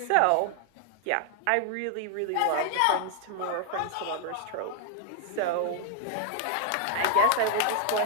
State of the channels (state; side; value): different; both; correlation 0.00